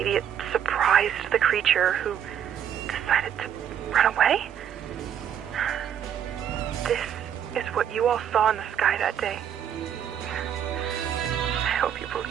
it surprised the creature who decided to run away? This is what you all saw in the sky that day. I hope you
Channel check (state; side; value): quieter; left; 9.2 dB